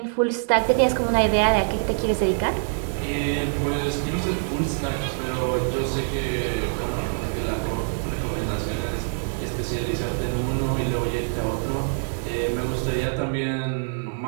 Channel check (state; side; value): silent; left; digital silence